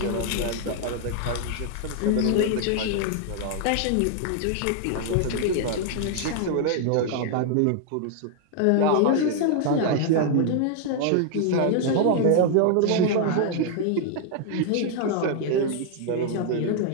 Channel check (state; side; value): different; both; correlation 0.00